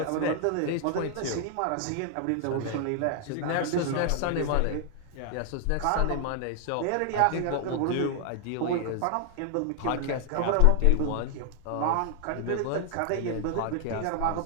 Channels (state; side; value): different; both; correlation 0.00